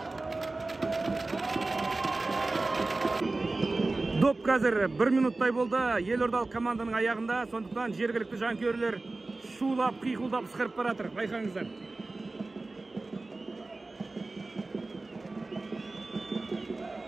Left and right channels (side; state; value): left; quieter; 3.2 dB